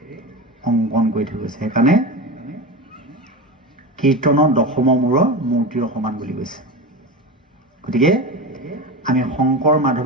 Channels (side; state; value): both; normal; correlation 0.24